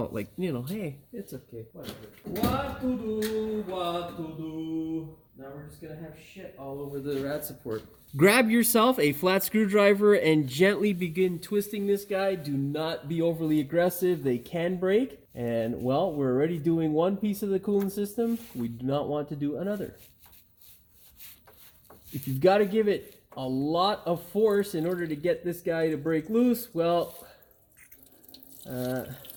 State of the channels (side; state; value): both; identical; correlation 1.00